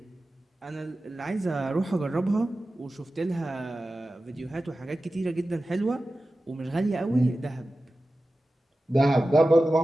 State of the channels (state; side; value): normal; both; correlation 0.94